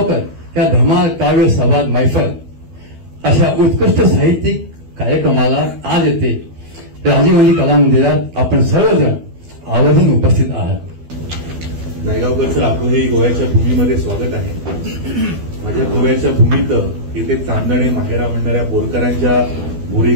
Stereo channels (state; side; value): late; left; 12 ms